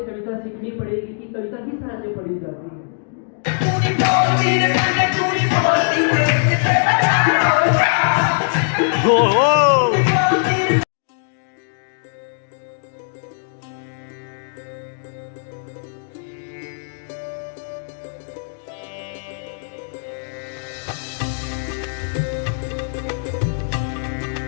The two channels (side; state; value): right; silent; digital silence